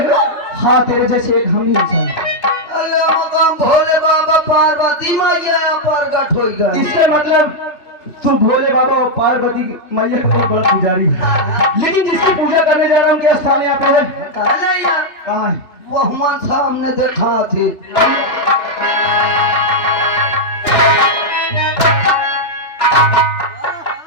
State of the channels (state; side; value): late; right; 3.4 ms